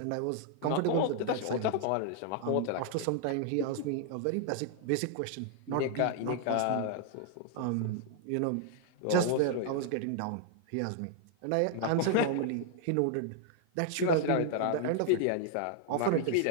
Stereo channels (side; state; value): both; different; correlation 0.00